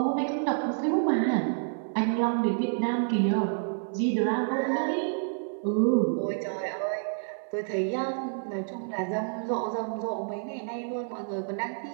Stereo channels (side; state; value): left; silent; digital silence